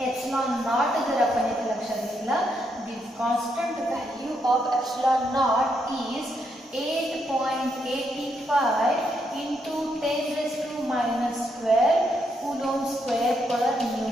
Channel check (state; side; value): normal; both; correlation 0.78